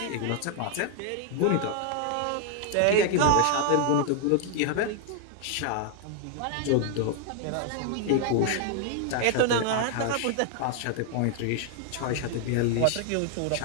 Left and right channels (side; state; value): both; different; correlation 0.00